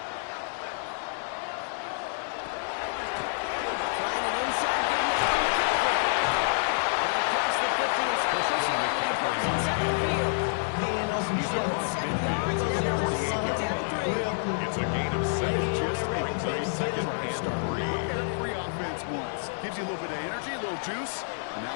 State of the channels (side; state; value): right; silent; digital silence